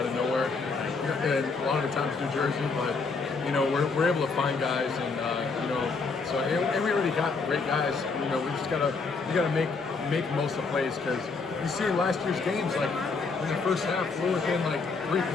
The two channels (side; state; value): right; quieter; 4.4 dB